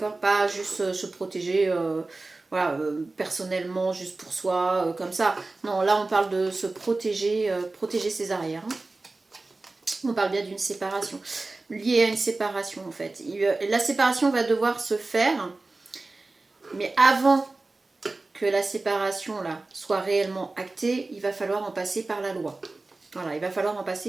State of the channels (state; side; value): quieter; left; 3.3 dB